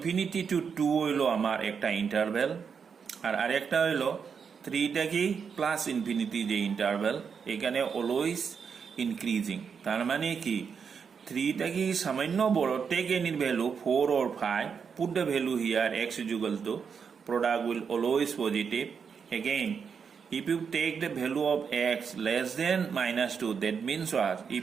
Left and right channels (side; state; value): left; quieter; 6.4 dB